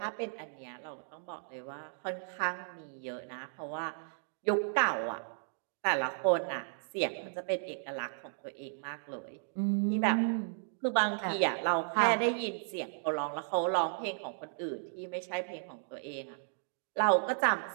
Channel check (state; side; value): silent; left; digital silence